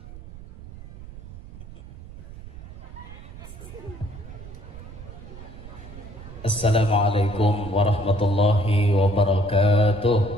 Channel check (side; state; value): right; noise; rumble, 14 dB below the sound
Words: Assalamualaikum warahmatullahi wabarakatuh.